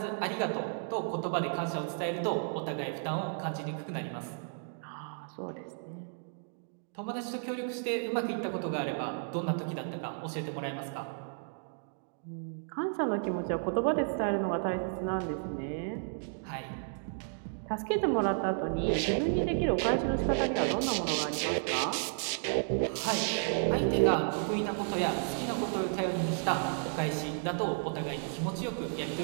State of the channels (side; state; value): left; silent; digital silence